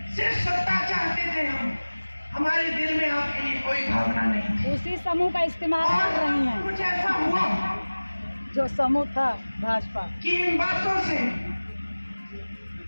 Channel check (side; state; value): both; inverted; correlation -1.00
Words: सिर्फ सत्ता चाहते थे हम, हमारे दिल में आपके लिए कोई भावना नहीं थी। उसी समूह का इस्तेमाल कर रही हैं। कुछ ऐसा हुआ जो समूह था भाजपा कि इन बातों से